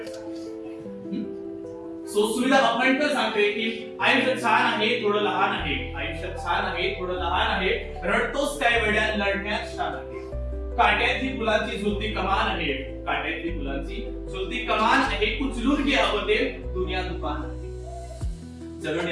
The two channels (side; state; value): both; identical; correlation 1.00